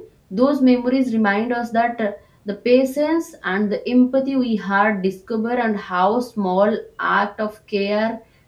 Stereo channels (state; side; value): identical; both; correlation 1.00